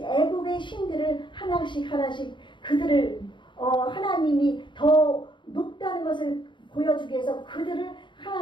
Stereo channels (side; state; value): right; late; 0.23 ms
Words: 신들을 하나씩 그들을 하나님이 더 높다는 것을 보여주기 위해서 그들을